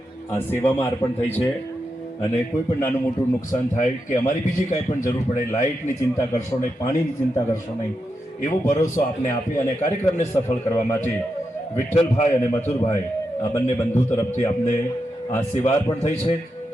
આ સેવામાં અર્પણ થઈ છે અને કોઈ પણ નાનું મોટું નુકસાન થાય કે અમારી બીજી કાંઈ પણ જરૂર પડે, લાઇટની ચિંતા કરશો નહીં, પાણીની ચિંતા કરશો નહીં, એવો ભરોસો આપને આપી અને કાર્યક્રમને સફળ કરવા માટે વિઠ્ઠલભાઈ અને મથુરભાઈ આ બંને બંધુ તરફથી આપને આ સેવા અર્પણ થઈ છે.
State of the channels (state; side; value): normal; both; correlation 0.86